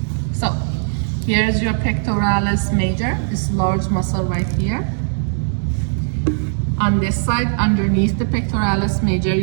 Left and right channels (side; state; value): left; silent; digital silence